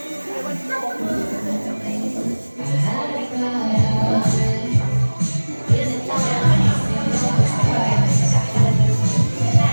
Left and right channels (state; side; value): inverted; both; correlation -1.00